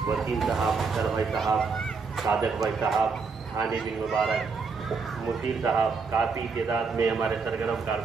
وسیم صاحب، اختر بھائی صاحب، صادق بھائی صاحب، حامد بن مبارک، مشیر صاحب، کافی تعداد میں ہمارے سرگرم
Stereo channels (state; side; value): quieter; left; 4.9 dB